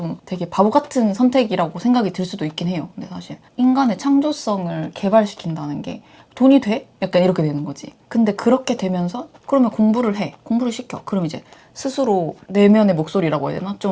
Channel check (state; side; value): identical; both; correlation 1.00